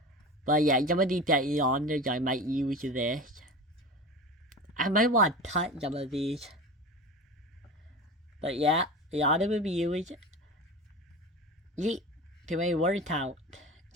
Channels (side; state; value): both; normal; correlation 0.30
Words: But yeah, some of these genres I might use this. I might want to touch some of these. But yeah, a lot of reviews. Yeet, too many word count.